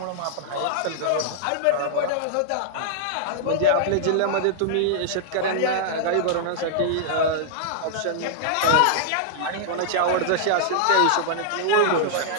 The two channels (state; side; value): different; both; correlation -0.01